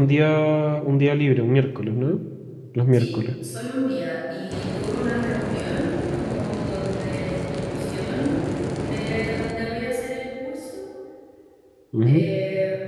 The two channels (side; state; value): both; identical; correlation 1.00